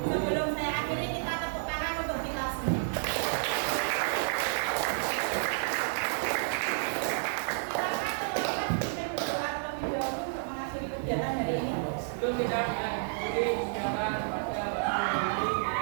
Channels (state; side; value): silent; left; digital silence